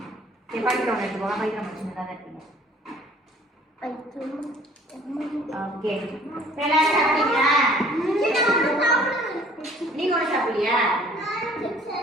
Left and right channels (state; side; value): normal; both; correlation 0.54